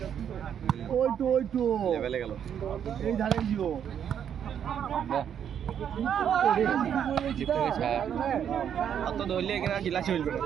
ওই তো লেভেলে গেল এই ধারে জিও অত ধরলে এখানে জেলা চলবে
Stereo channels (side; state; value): left; quieter; 8.8 dB